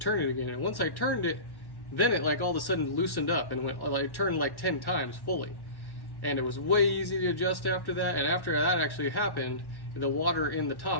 it again. And once I turned it, then it like all of a sudden loosened up and went like turned like 10 times fully. And it was way easy to adjust after that. And after that actually happened, the water in the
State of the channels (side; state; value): right; late; 1.1 ms